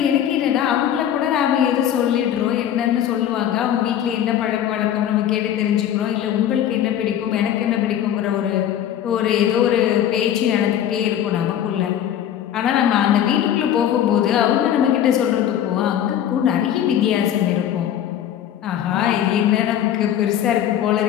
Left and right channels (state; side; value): quieter; right; 10.5 dB